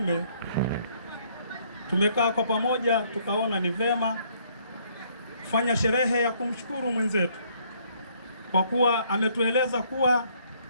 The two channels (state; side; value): inverted; both; correlation -0.65